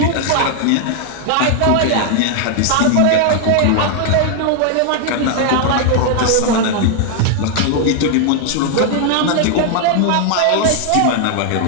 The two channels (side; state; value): both; different; correlation 0.00